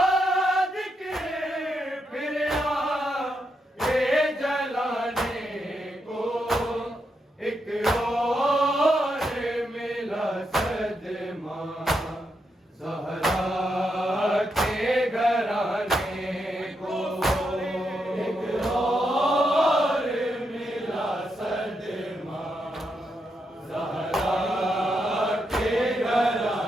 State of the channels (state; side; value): normal; both; correlation 0.82